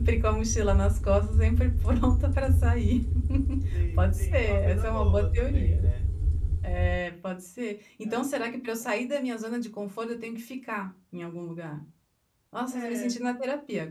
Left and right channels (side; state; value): both; identical; correlation 1.00